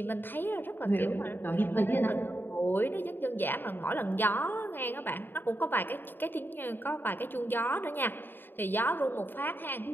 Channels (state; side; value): late; right; 0.095 ms